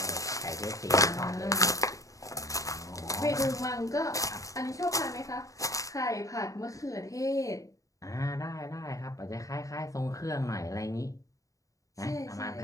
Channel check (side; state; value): right; late; 0.16 ms